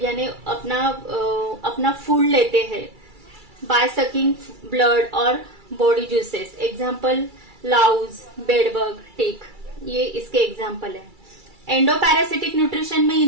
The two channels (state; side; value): late; left; 2.3 ms